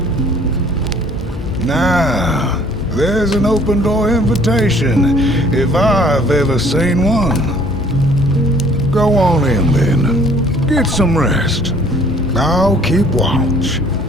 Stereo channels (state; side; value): normal; both; correlation 0.56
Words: Now, there's an open door invitation, if I've ever seen one. Go on in then. Get some rest. I'll keep watch.